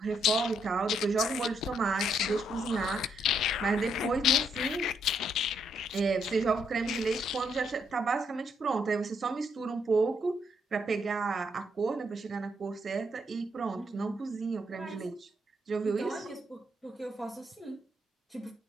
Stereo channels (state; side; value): normal; both; correlation 0.75